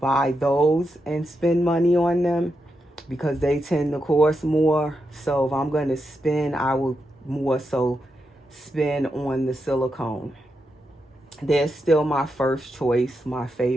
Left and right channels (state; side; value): normal; both; correlation 0.85